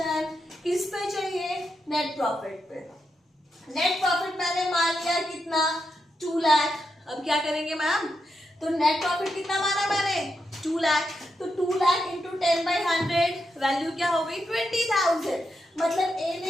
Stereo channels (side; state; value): both; normal; correlation 0.84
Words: किस पे चाहिए? नेट प्रॉफिट पे। नेट प्रॉफिट मैंने मान लिया कितना? 2 लाख। अब क्या करेंगे मैम? तो नेट प्रॉफिट कितना माना मैंने? 2 लाख। तो 2 लाख इंटू 10/100 वैल्यू क्या हो गई? 20,000। मतलब ए